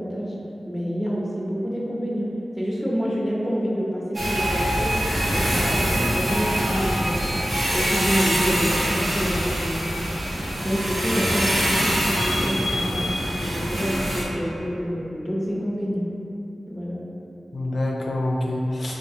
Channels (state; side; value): normal; both; correlation 0.94